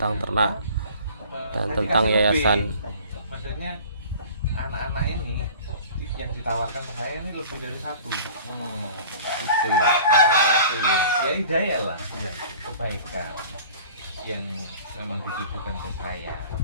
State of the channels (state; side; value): inverted; both; correlation -0.46